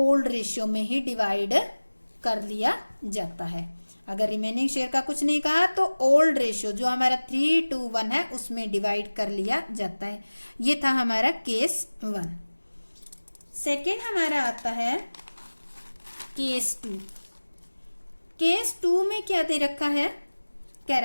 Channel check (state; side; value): inverted; both; correlation -1.00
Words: रेशियो में ही डिवाइड कर लिया जाता है। अगर रिमेनिंग शेयर का कुछ नहीं कहा तो ओल्ड रेशियो जो हमारा 3:1 है उसमें डिवाइड कर लिया जाता है। ये था हमारा केस 1। सेकेंड हमारा आता है केस 2। केस 2 में क्या दे रखा है? क्या